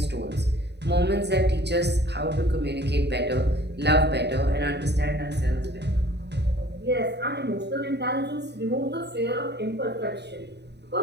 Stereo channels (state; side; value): late; left; 0.49 ms